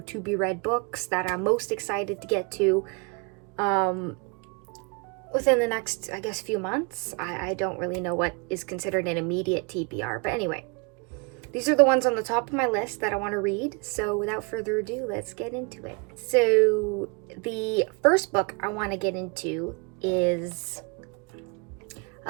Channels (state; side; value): quieter; left; 31.6 dB